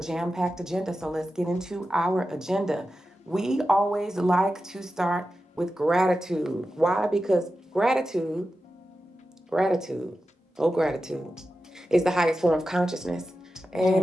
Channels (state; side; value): normal; both; correlation 0.92